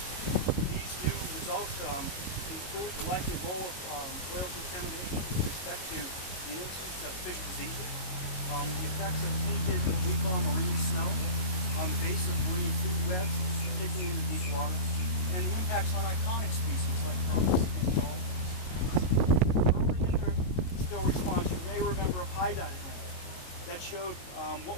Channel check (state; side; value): late; right; 22 ms